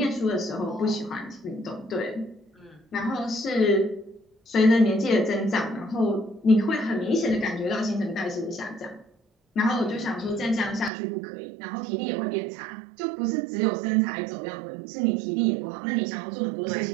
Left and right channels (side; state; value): left; drops out; at 10.9 s